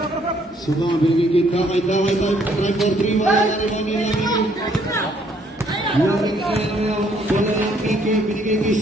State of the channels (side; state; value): both; normal; correlation 0.66